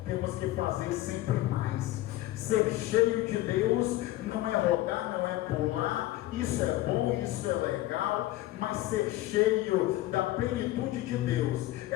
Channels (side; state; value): right; quieter; 16.2 dB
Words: temos que fazer sempre mais. Ser cheio de Deus não é rodar, não é pular isso é bom, isso é legal, mas ser cheio da plenitude de Deus